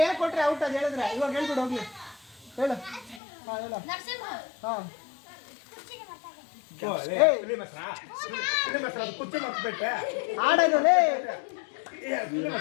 ಏನ್ ಕೊಟ್ರೆ ಔಟ್ ಅದು ಹೇಳಿದ್ರೆ ಇವಾಗ ಹೇಳ್ಬಿಡು ಹೋಗ್ಲಿ. ಹೇಳು ಆಡೋದು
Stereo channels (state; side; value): drops out; right; at 3.2 s